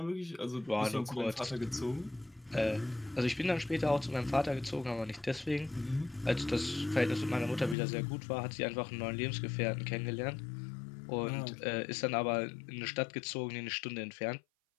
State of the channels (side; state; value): right; drops out; at 7.8 s